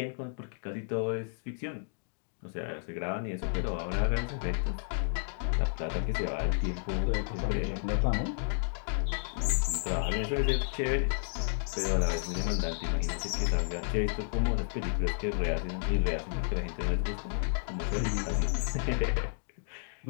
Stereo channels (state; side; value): silent; right; digital silence